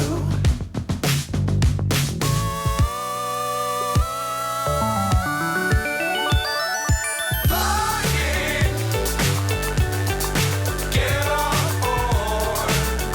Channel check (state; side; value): identical; both; correlation 1.00